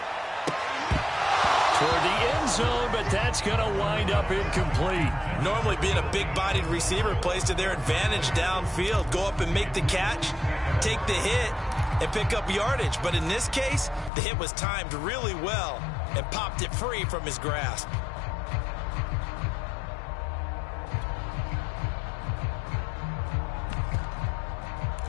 Toward the end zone, but that's going to wind up incomplete. Normally being a big-bodied receiver plays to their advantage downfield. Go up and make the catch, take the hit, and pick up yardage. But in this case, the hit was timed really well and popped it free from his grasp.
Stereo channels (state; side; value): drops out; right; at 14.1 s